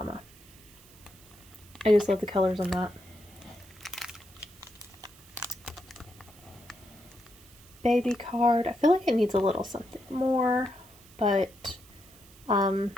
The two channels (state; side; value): noise; right; hiss, 24 dB below the sound